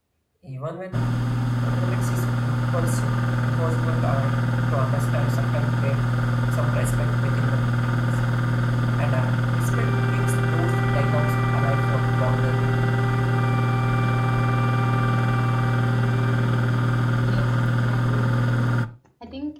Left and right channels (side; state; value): both; identical; correlation 1.00